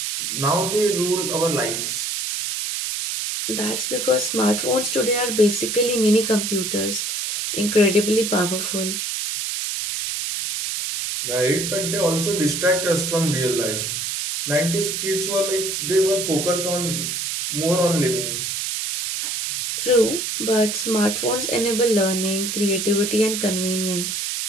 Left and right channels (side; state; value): right; noise; hiss, 2 dB below the sound